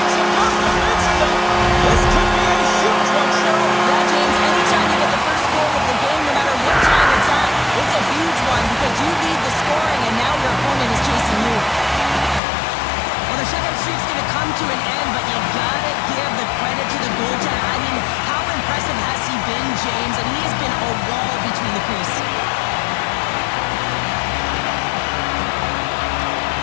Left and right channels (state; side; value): drops out; right; at 12.4 s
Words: To an end, but you gotta give the credit to the goaltender. I mean, how impressive has he been, James? And he has been a wall between the crease.